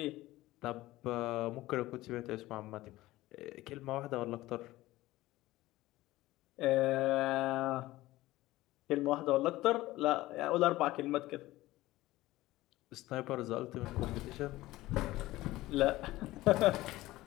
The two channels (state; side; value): quieter; right; 17.4 dB